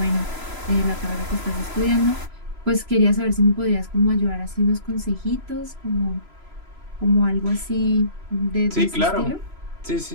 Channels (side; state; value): left; late; 3.0 ms